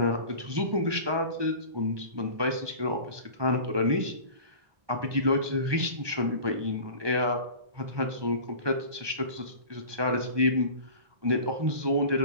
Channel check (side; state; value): left; late; 1.2 ms